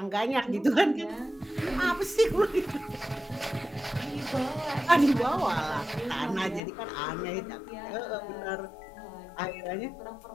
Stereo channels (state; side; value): drops out; right; at 6.6 s